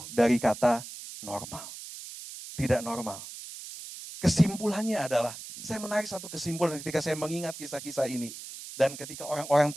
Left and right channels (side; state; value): right; noise; hiss, 12 dB below the sound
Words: dari kata normal. Tidak normal. Kesimpulannya adalah, saya menarik satu kesimpulan ketika saya mengingat kisah-kisah ini. Dan ketika orang-orang